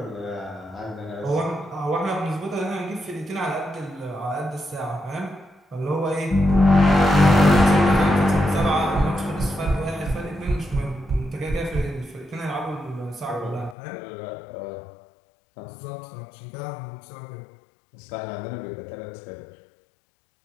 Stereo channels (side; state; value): right; drops out; at 13.8 s